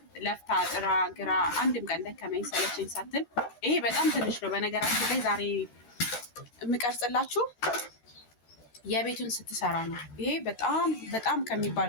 ለፍታ ጥራ ግራ አንድም ቀን ደከመኝ ሰለቸኝ ሳትል፣ ይሄ በጣም ትንሽ ነው። በነገራችን ላይ ዛሬ የምቀርጽላችሁ የቤቱን ስትሰራ ነው። ይሄ በጣም በጣም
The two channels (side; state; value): right; late; 13 ms